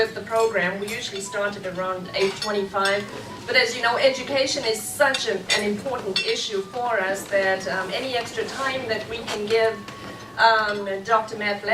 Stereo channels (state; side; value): identical; both; correlation 1.00